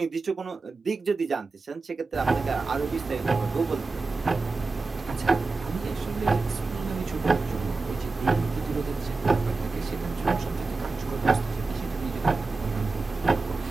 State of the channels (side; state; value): left; quieter; 3.8 dB